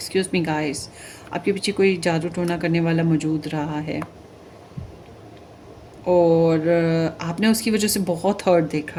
me guys, आपके पीछे कोई जादू टोना करने वाला मौजूद रहा है और आपने उसकी वजह से बहुत हर्ट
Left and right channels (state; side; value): identical; both; correlation 1.00